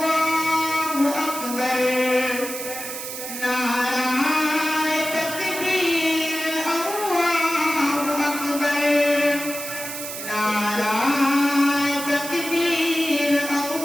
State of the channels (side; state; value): right; noise; hiss, 7 dB below the sound